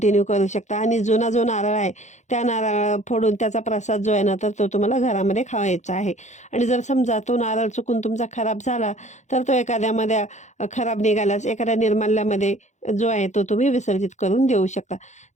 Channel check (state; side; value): late; right; 0.34 ms